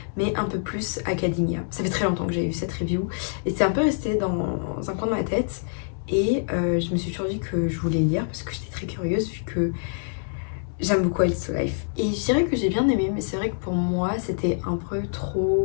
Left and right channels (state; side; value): silent; right; 61 dB below the other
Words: mais un peu plus academia. Ça fait très longtemps que j'avais vu cette review et c'est un peu resté dans un coin de ma tête et je me suis toujours dit que je voulais le lire parce que j'étais très curieuse vu que j'aime beaucoup A Little Life. Et je dirais que j'ai bien aimé, mais c'est vrai que pour moi c'était un peu